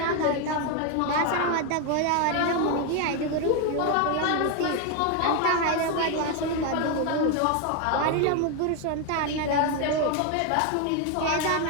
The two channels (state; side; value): different; both; correlation 0.01